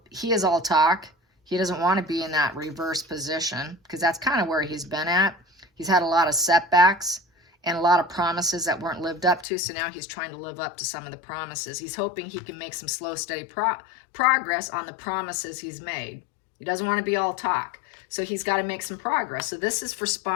he is all talk. He doesn't want to be in that reverse position because that's kind of where he's been at. He's had a lot of setbacks and a lot of promises that weren't lived up to. So now he's trying to live up to some of the promises. He's hoping he can make some slow, steady progress on the promises he's made. He doesn't want to be all talk. So he's got to make some progress. So this is for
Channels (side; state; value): right; drops out; at 9.5 s